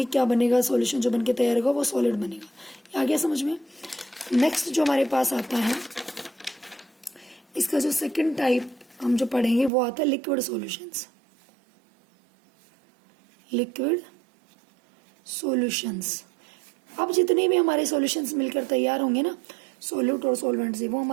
क्या बनेगा, सॉल्यूशन जो बन के तैयार होगा वो सॉलिड बनेगा। आ गया समझ में। नेक्स्ट जो हमारे पास आता है, इसका जो सेकंड टाइप हम जो पढ़ेंगे वो आता है लिक्विड सॉल्यूशंस, लिक्विड सॉल्यूशंस। अब जितने भी हमारे सॉल्यूशंस मिलकर तैयार होंगे ना, सोल्यूट और सॉल्वेंट से, वो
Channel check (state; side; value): drops out; left; at 9.7 s